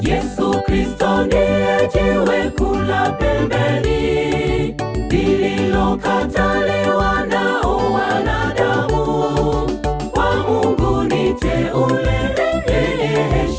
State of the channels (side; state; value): both; identical; correlation 1.00